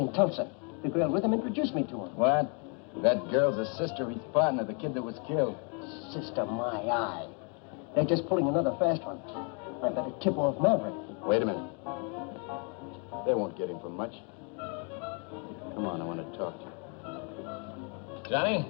in Tulsa. The girl with him introduced me to her. What? That girl's a sister of his partner, the kid that was killed. Sister, my eye. They're just pulling another fast one. I better tip off Maverick. Wait a minute. They won't get him for much. Come on, I want to talk to you. Johnny,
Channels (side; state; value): right; quieter; 36.5 dB